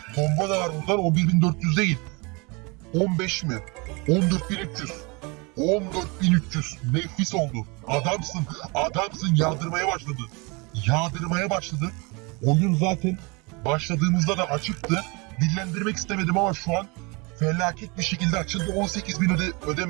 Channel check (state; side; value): quieter; left; 28.4 dB